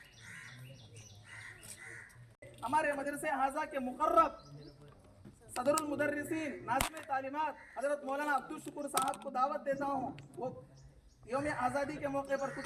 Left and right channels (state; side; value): identical; both; correlation 1.00